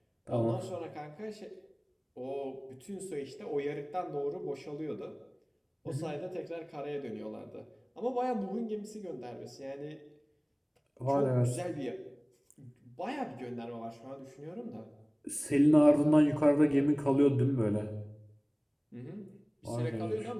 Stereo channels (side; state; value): both; identical; correlation 1.00